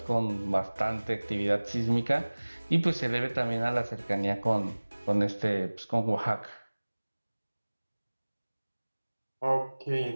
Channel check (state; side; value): inverted; both; correlation -1.00